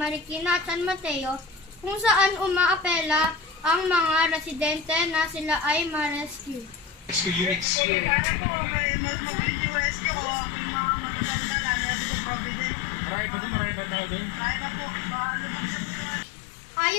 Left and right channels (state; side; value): drops out; right; at 7.7 s